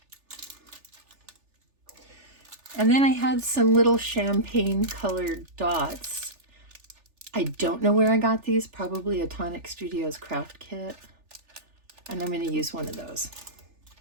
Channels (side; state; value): left; late; 3.4 ms